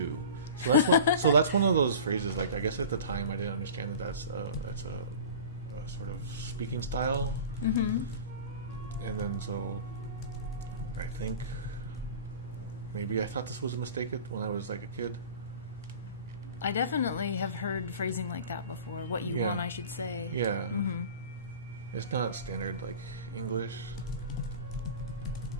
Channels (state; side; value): inverted; both; correlation -0.37